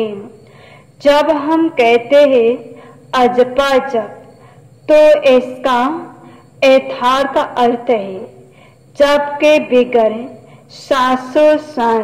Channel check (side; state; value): both; identical; correlation 1.00